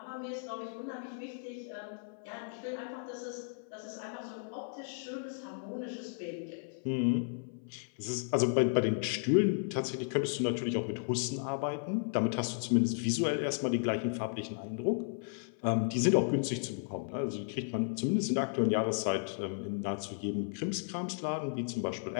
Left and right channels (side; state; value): right; silent; 55 dB below the other